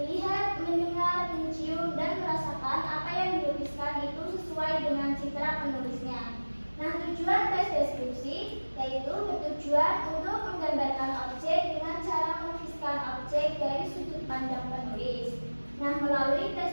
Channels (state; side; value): inverted; both; correlation -1.00